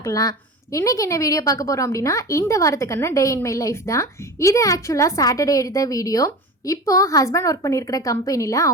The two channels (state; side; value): normal; both; correlation 0.30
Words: இன்றைக்கி என்ன வீடியோ பார்க்க போகிறோம் அப்படின்னா, இந்த வாரத்துக்கான டே இன் மை லைஃப் தான். இது ஆக்சுவலாக சாட்டர்டே எடுத்த வீடியோ. இப்போது ஹஸ்பண்ட் ஒர்க் பண்ணியிருக்கிற கம்பெனியில்